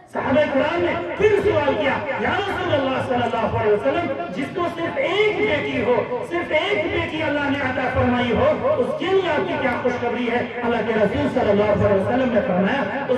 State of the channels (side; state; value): both; identical; correlation 1.00